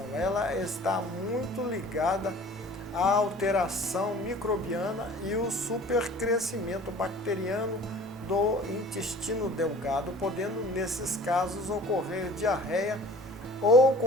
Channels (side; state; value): both; normal; correlation 0.46